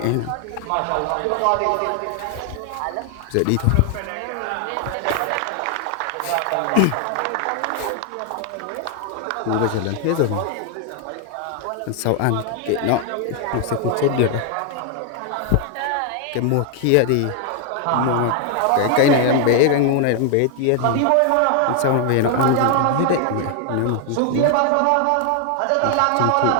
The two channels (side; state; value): both; different; correlation 0.00